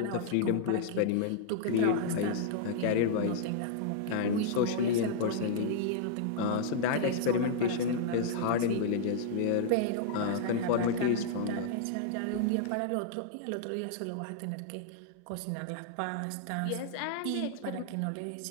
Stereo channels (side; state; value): both; different; correlation -0.01